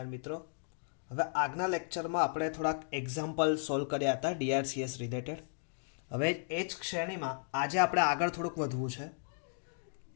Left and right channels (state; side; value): silent; right; digital silence